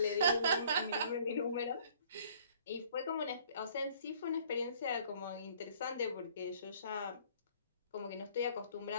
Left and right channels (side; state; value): both; inverted; correlation -0.57